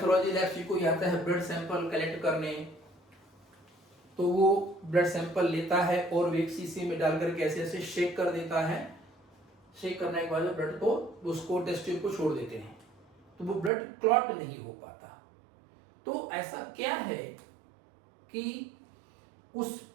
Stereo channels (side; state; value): left; drops out; at 13.7 s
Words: लैब से कोई आता है ब्लड सैंपल कलेक्ट करने, तो वो ब्लड सैंपल लेता है और एक शीशी में डाल करके ऐसे ऐसे शेक कर देता है, शेक करने के बाद ब्लड को उसको टेस्ट ट्यूब को छोड़ देते हैं, तो वो ब्लड क्लॉट नहीं हो पाता। तो ऐसा क्या है कि